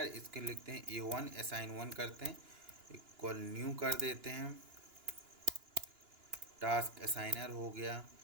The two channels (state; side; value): late; left; 2.9 ms